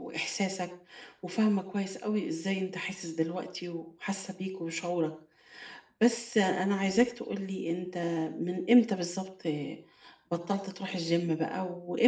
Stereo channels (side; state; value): both; identical; correlation 1.00